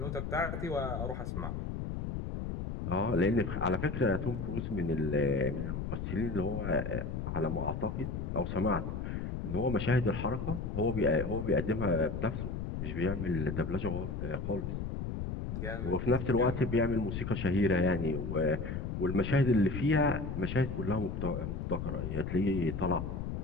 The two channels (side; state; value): left; noise; rumble, 4 dB below the sound